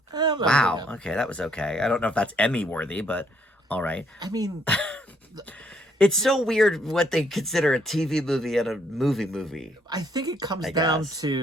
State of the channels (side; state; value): both; normal; correlation 0.69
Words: Wow, okay, that was okay. I don't know if that's Emmy worthy, but all right. I mean... It's so weird what they consider a TV movie and a movie. I think it comes down